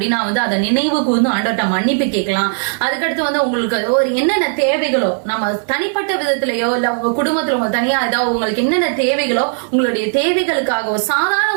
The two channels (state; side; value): silent; left; digital silence